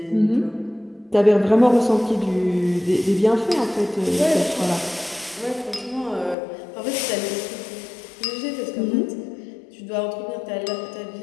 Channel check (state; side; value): drops out; right; at 6.4 s